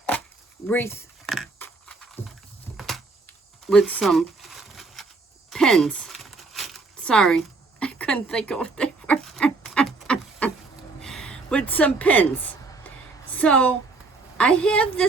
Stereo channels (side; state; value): left; quieter; 3.8 dB